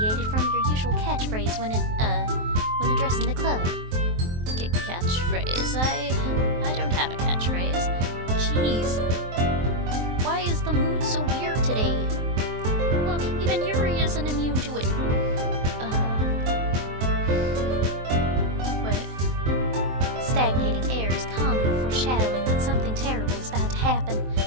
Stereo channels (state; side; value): late; left; 23 ms